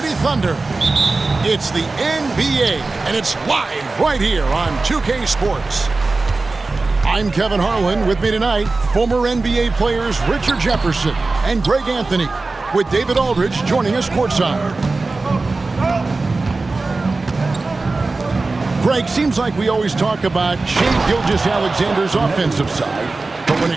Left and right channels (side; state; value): left; quieter; 3.6 dB